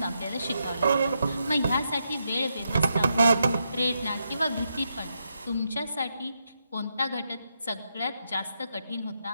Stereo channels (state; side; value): inverted; both; correlation -0.82